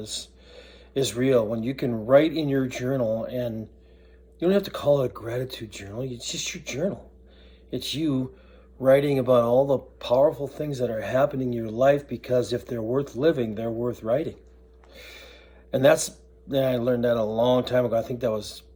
real. When you can write in your journal, and you don't have to call it a gratitude journal, it's just your journal. It's you writing about all the powerful things that are happening in your life, because if they're worth living, they're worth writing. And I learned that a long time ago. I think that was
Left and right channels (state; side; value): identical; both; correlation 1.00